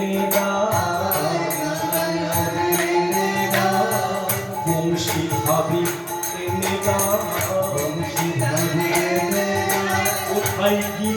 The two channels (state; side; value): identical; both; correlation 1.00